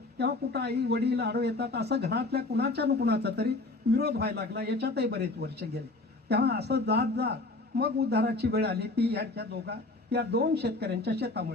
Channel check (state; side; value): quieter; right; 3.1 dB